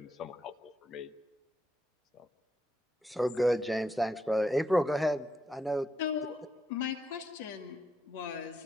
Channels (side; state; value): both; normal; correlation 0.81